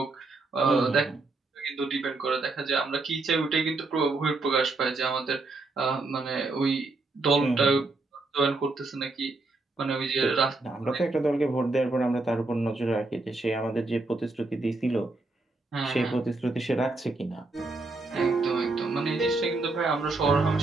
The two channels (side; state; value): left; quieter; 3.4 dB